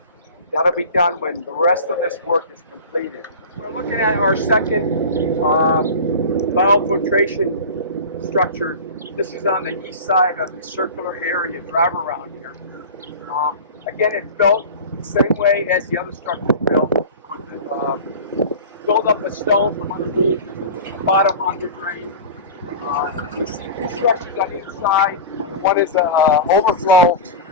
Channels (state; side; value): inverted; both; correlation -0.32